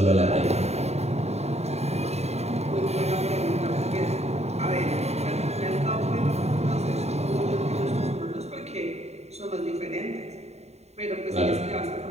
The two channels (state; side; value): late; left; 0.31 ms